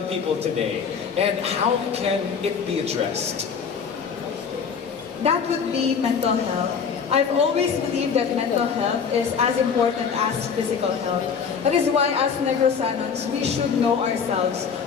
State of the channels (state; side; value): quieter; right; 6.4 dB